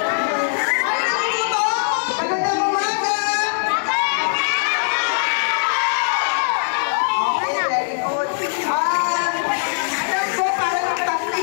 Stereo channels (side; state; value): right; silent; digital silence